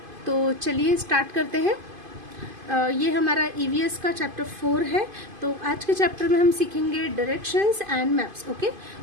तो चलिए स्टार्ट करते हैं। ये हमारा ईवीएस का चैप्टर 4 है। तो आज के चैप्टर में हम सीखेंगे डायरेक्शंस एंड मैप्स। ओके,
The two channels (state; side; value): late; left; 2.5 ms